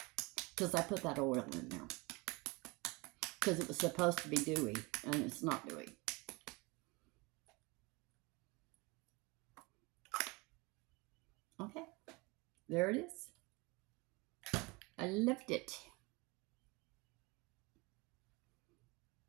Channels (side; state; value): left; quieter; 25.9 dB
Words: because I put that oil in there. Because it was supposed to be dewy, and it's not dewy. Okay, there it is. I loved it.